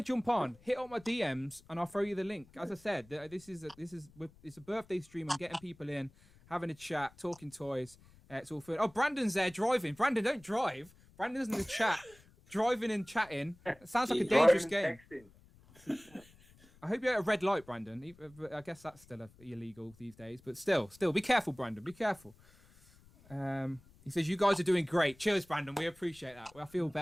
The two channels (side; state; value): left; noise; rumble, 26 dB below the sound